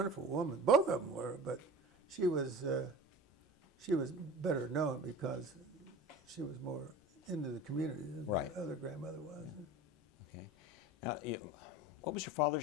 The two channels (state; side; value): normal; both; correlation 0.36